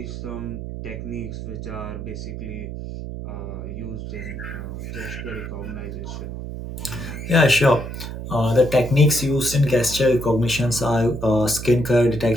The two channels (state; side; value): noise; right; hum, 8 dB below the sound